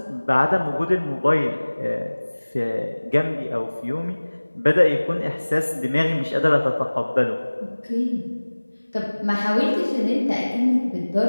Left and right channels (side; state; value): both; inverted; correlation -1.00